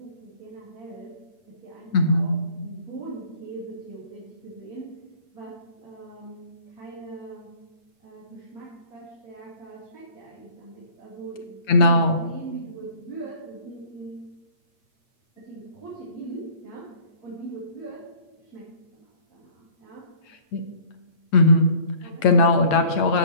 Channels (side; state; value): right; late; 8.6 ms